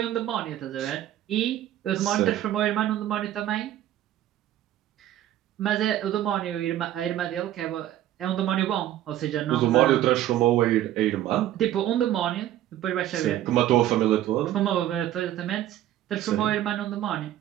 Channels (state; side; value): quieter; left; 12.8 dB